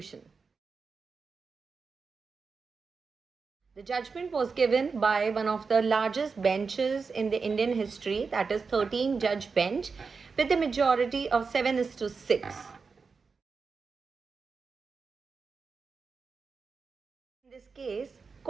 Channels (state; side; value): quieter; left; 4.9 dB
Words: The judgment was given by one of the largest benches in the Indian history, that is 13-judge bench, with a majority of 7:6. In this case,